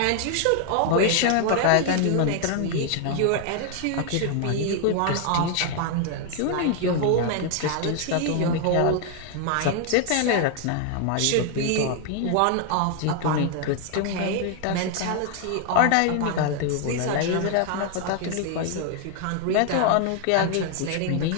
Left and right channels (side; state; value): both; different; correlation 0.00